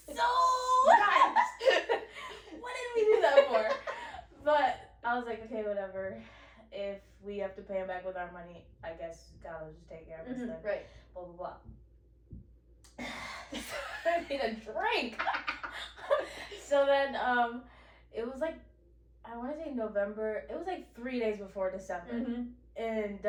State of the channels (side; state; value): both; identical; correlation 1.00